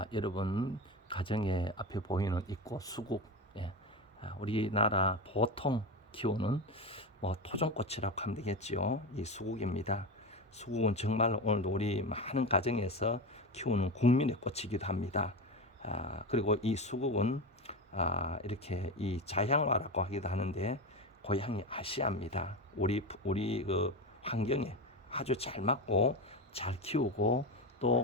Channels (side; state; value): both; normal; correlation 0.20